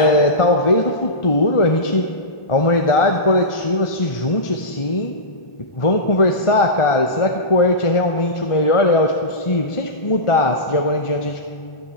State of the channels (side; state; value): right; late; 1.4 ms